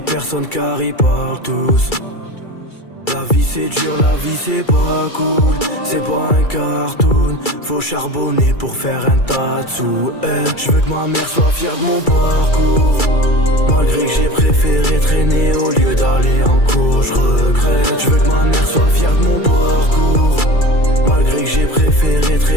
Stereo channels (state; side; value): late; right; 2.3 ms